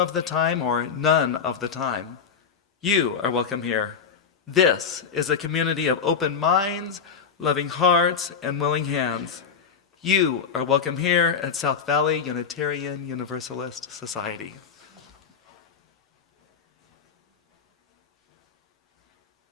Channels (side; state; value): right; quieter; 6.4 dB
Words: the time, or none of the time, you are welcome here. This is a community of open minds, loving hearts, and willing hands. You are welcome here at South Valley Unitarian Universalist Society.